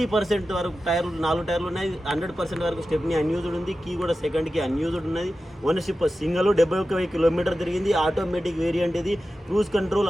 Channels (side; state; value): both; normal; correlation 0.93